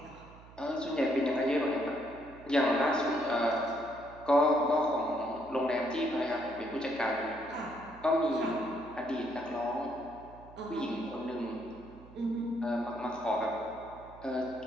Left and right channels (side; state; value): right; noise; hum, 20 dB below the sound